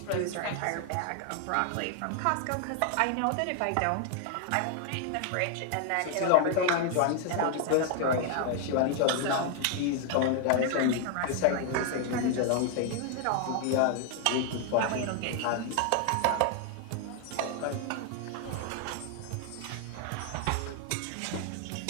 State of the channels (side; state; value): both; different; correlation 0.00